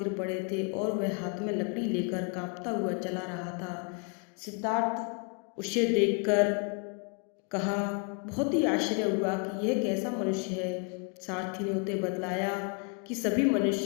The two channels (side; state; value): right; quieter; 36.4 dB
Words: पड़े थे और वह हाथ में लकड़ी लेकर कांपता हुआ चला रहा था। सिद्धार्थ उसे देखकर कहा, बहुत ही आश्चर्य हुआ कि यह कैसा मनुष्य है। सारथी ने उसे बतलाया कि सभी